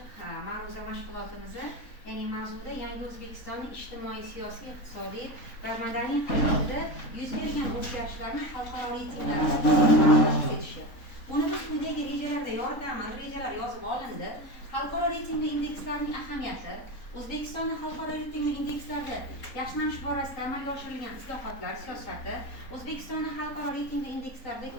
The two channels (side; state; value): right; late; 3.9 ms